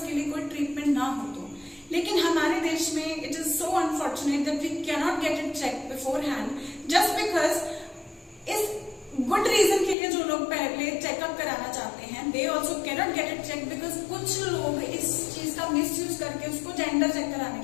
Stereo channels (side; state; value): right; drops out; at 10.0 s